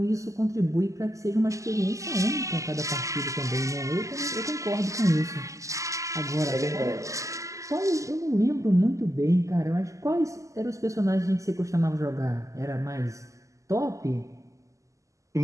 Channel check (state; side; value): late; left; 0.16 ms